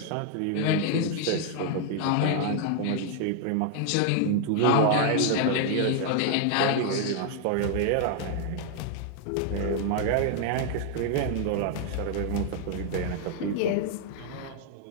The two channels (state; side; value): different; both; correlation 0.00